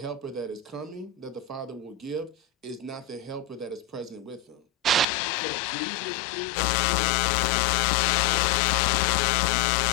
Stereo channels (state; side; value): drops out; right; at 5.1 s